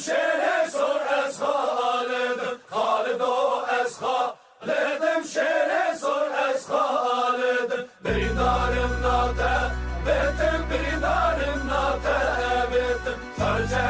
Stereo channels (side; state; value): both; identical; correlation 1.00